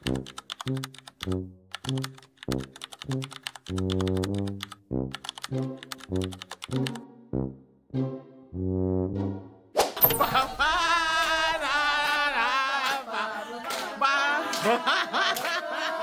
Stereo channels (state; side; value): identical; both; correlation 1.00